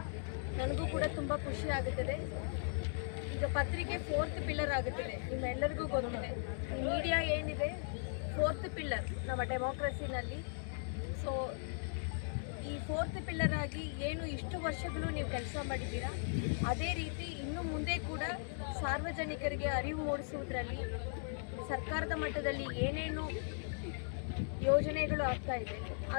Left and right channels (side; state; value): right; silent; digital silence